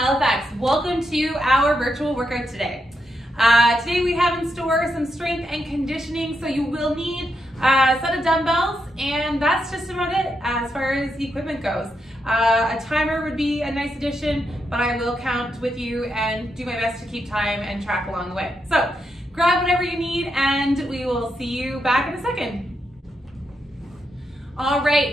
Welcome to our virtual workout today. Today we have in store some strength and conditioning, so you will need a set of dumbbells, and that's just about it as far as the equipment goes. A timer would be a nice addition, but I will count with you and do my best to keep time and track along the way. So grab whatever you need and we will see you back in a second. All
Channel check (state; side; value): normal; both; correlation 0.83